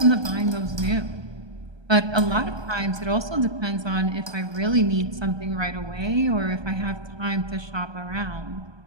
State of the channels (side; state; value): left; late; 1.2 ms